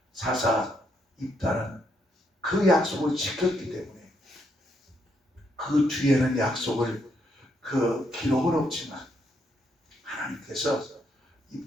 사사 입다는 그 약속을 지켰기 때문에 그 뒤에는 약속을 그 기록은 없지만 하나님께서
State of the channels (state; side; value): normal; both; correlation 0.75